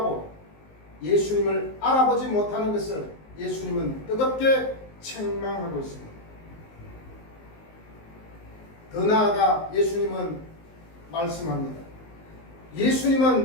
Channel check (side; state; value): right; late; 19 ms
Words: 예수님을 알아보지 못하는 것을 예수님은 뜨겁게 책망하고 있습니다. 더 나아가 예수님은 말씀합니다.